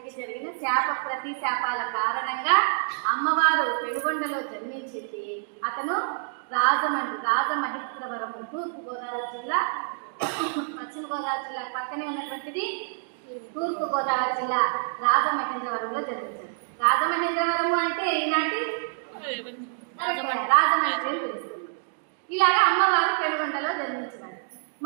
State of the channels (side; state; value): left; silent; digital silence